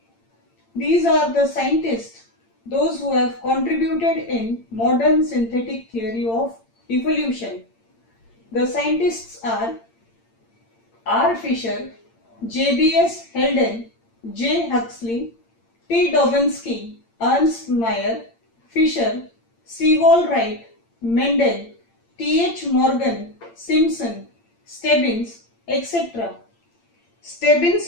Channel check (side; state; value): right; late; 8.8 ms